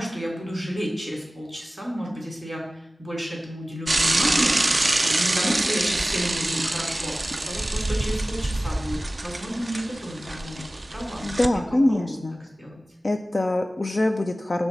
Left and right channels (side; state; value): both; normal; correlation 0.97